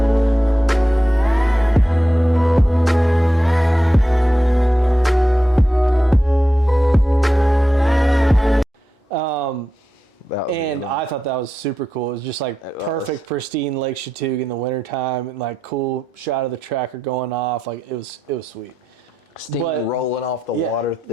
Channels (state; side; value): normal; both; correlation 0.88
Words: And I thought that was super cool. It was just like perfect, pristine Lake Chautauqua in the wintertime, and like cool shot of the tracker going off. Like it was sweet. Steam rolling off the water